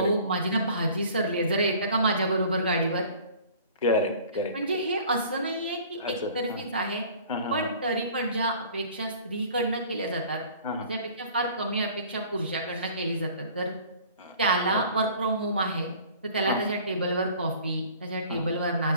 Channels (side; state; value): both; inverted; correlation -0.49